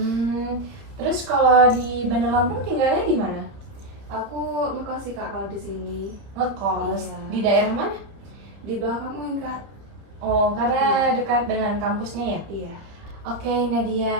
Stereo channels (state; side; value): late; left; 30 ms